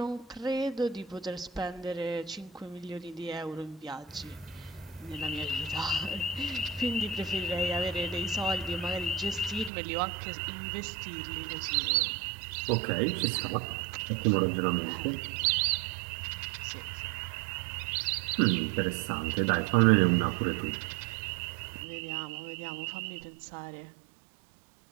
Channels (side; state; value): left; drops out; at 9.7 s